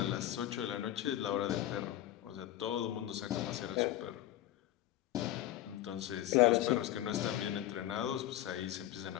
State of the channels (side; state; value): right; quieter; 13.6 dB